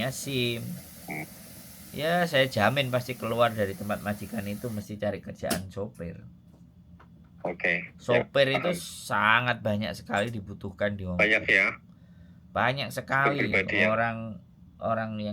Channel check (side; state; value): both; identical; correlation 1.00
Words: SIM, ya saya jamin pasti keluar dari tempat majikan itu mesti cari kerjaan sopir. Sopir itu sangat banyak sekali dibutuhkan di Hong Kong. Banyak ya. Banyak sekali orang